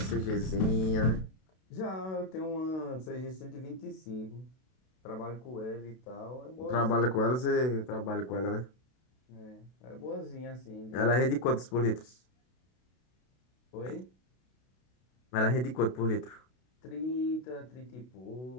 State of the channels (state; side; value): late; right; 32 ms